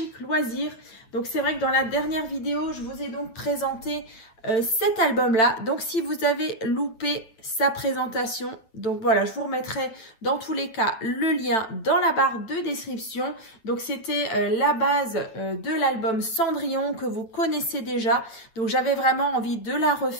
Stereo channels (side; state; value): right; late; 9.0 ms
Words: Loisirs. Donc c'est vrai que dans la dernière vidéo je vous ai donc présenté cet album là, donc si vous avez loupé sa présentation, donc voilà, je vous remettrai dans tous les cas le lien dans la barre de description. Donc c'était la base de l'album Cendrillon que vous connaissez déjà, donc j'avais vraiment envie de la